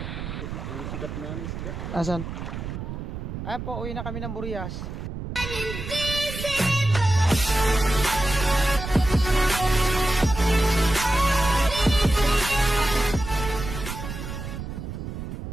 Asan? Ay po, uwi na kami ng Burias.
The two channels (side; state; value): right; noise; rumble, 7 dB below the sound